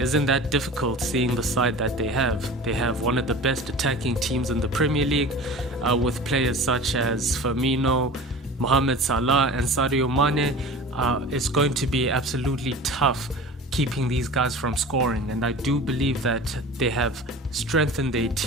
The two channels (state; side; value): normal; both; correlation 0.37